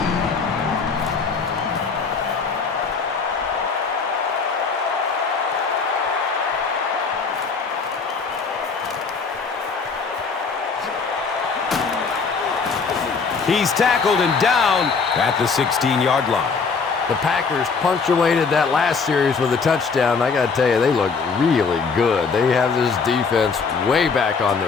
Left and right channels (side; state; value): right; quieter; 5.1 dB